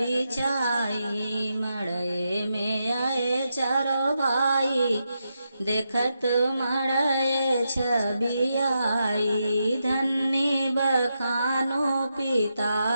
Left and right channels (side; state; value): both; inverted; correlation -0.85